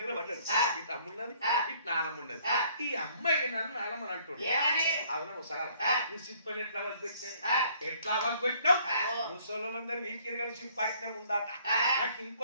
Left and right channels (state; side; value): inverted; both; correlation -0.61